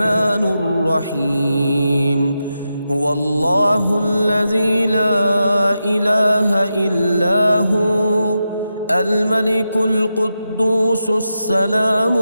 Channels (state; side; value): inverted; both; correlation -0.88